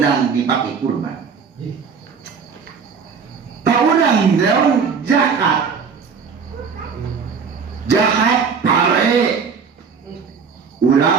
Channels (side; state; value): left; quieter; 5.9 dB